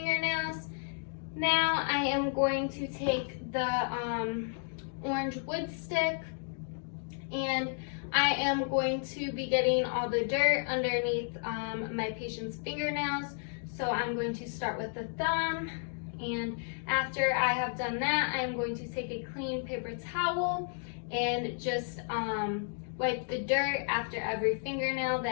now I am going to take the orange wood stick, and I am going to be getting all the dirt underneath my patient's fingernails. So I'm going to start with the thumb, and after I have done that, I am going to take a clean paper towel and just wipe the dirt after every fingernail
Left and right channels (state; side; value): silent; right; 56 dB below the other